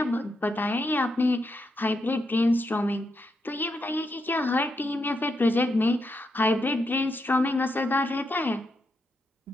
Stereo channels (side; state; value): both; normal; correlation 0.82